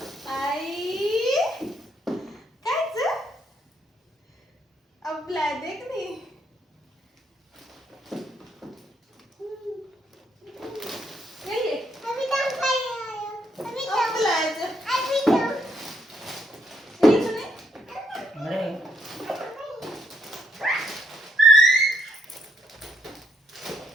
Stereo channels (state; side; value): normal; both; correlation 0.72